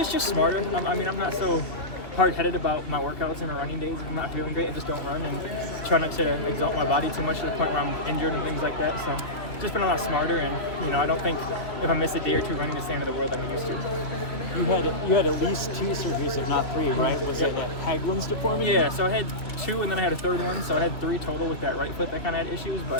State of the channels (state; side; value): late; right; 2.7 ms